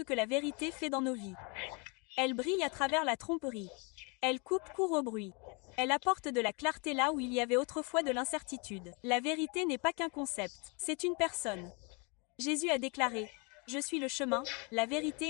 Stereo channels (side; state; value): right; quieter; 32.3 dB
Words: que la vérité fait dans nos vies. Elle brille à travers la tromperie. Elle coupe court au bruit. Elle apporte de la clarté là où il y avait autrefois de l'incertitude. La vérité n'est pas qu'un concept, c'est une personne. Jésus a déclaré « Je suis le chemin, la